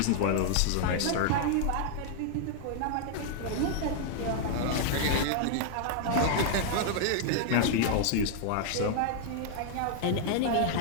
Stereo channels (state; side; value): different; both; correlation 0.00